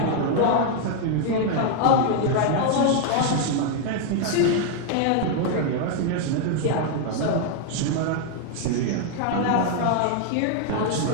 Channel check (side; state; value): both; different; correlation 0.00